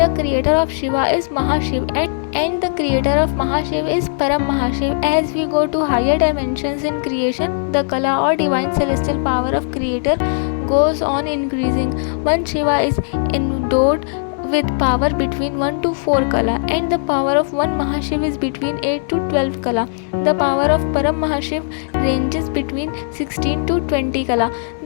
creator of Shiva is Mahashiv, and the creator of Mahashiv is Param Mahashiv. As we go to higher dimensions in creation, the Kala or divine celestial power of creator goes on increasing. One Shiva is endowed with power between 1 to 4 Kala, and the power of one Mahashiv is between 8 to 12 Kala. The power of Param Mahashiv ranges between 16 to 20 Kala.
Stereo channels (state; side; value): silent; right; 67 dB below the other